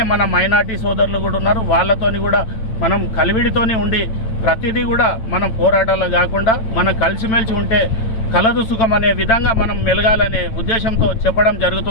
మన మైనార్టీ సోదరులు కూడా ఉన్నారు, వాళ్ళతోని కూడా మనం కలివిడితోని ఉండి ప్రతిదీ కూడా మనం పోరాటాలు కాకుండా మనం కలిసిమెలిసి ఉంటే కలదు సుఖం అనే విధంగా మనం మెలగాలనే ఉద్దేశంతో చెప్పడం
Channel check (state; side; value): late; right; 9.0 ms